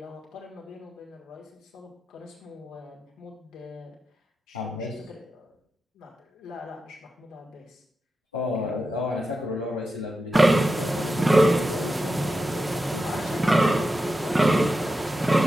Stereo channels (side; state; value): both; normal; correlation 0.90